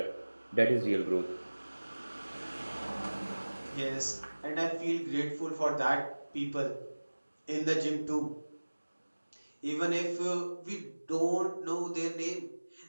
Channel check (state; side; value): inverted; both; correlation -1.00